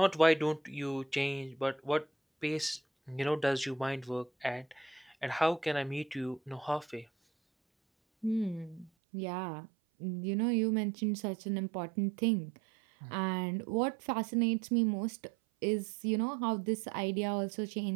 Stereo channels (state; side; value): drops out; left; at 8.9 s